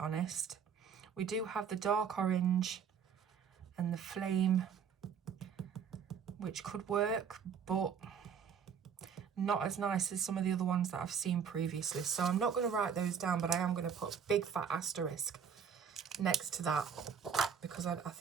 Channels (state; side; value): quieter; left; 7.1 dB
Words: We do have the dark orange and the flame, which could work, but not as nice as some of the other ones that I've seen previously. So I'm not going to write those down, but I am going to put a big fat asterisk next to that, because I